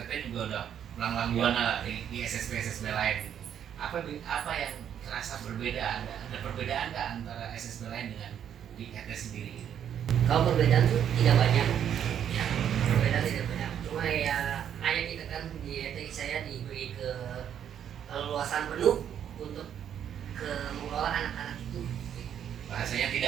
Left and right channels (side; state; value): left; quieter; 9.3 dB